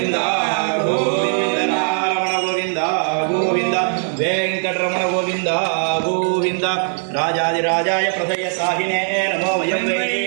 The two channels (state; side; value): silent; left; digital silence